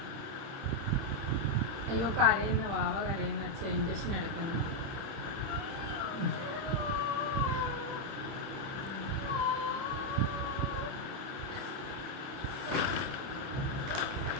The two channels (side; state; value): left; late; 30 ms